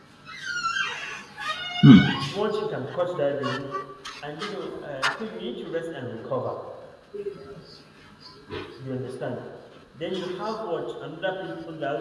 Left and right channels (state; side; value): identical; both; correlation 1.00